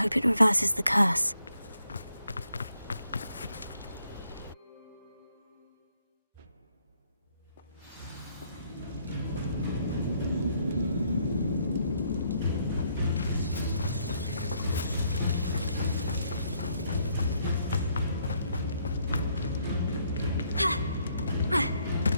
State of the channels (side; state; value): both; inverted; correlation -0.72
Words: it reverses the curse.